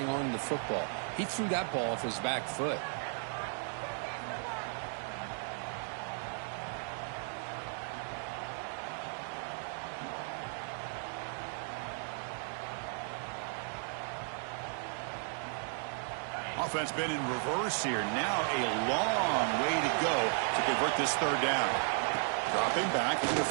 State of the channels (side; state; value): left; silent; 54 dB below the other